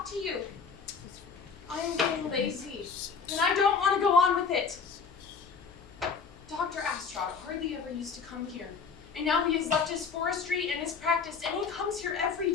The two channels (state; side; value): quieter; right; 5.6 dB